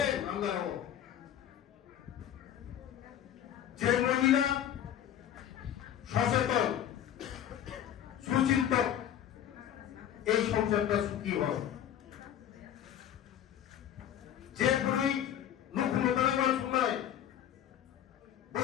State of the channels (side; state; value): right; quieter; 10.5 dB